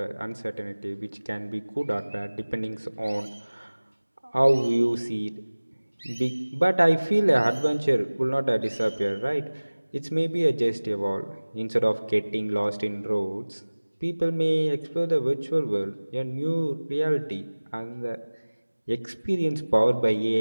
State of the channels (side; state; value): both; inverted; correlation -1.00